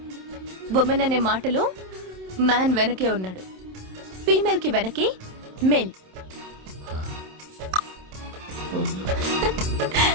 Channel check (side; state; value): left; late; 27 ms